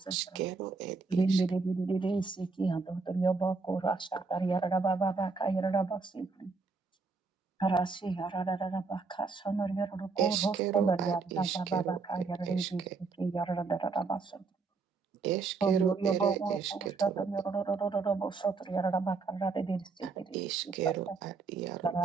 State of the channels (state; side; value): quieter; left; 4.4 dB